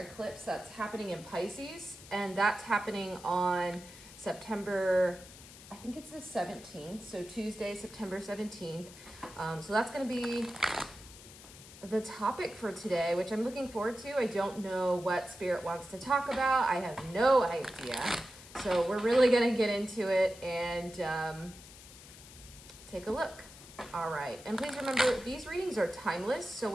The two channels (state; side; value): noise; left; hiss, 18 dB below the sound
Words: eclipse that's happening in Pisces, and that's happening on September, I think it's the 17th, so Tuesday, September 17th. So that's going to be the topic for today, which I'm looking forward to. I don't know what Spirit wants to talk about. I have no idea. So we're really going to get into it and take a look. All right. And please remember, these readings are timeless. So